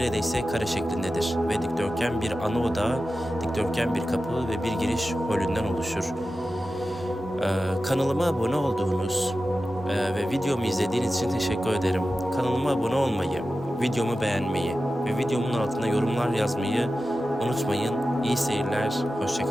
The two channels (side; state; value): both; normal; correlation 0.93